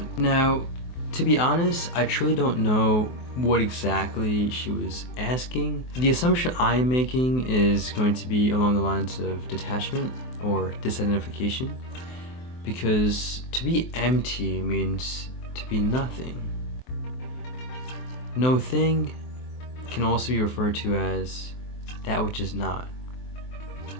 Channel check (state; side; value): late; right; 23 ms